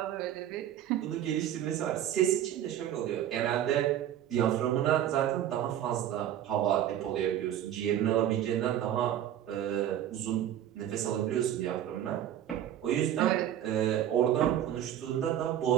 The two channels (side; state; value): left; quieter; 11.2 dB